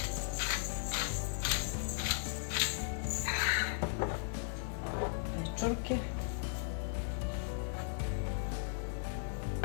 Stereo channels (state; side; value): silent; right; digital silence